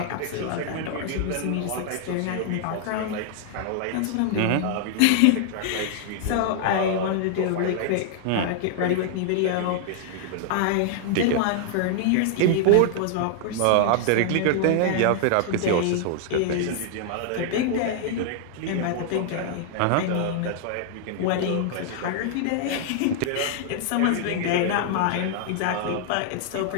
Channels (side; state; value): both; different; correlation 0.00